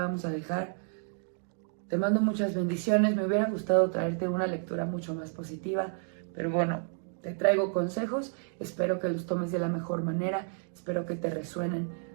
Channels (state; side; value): silent; left; 57 dB below the other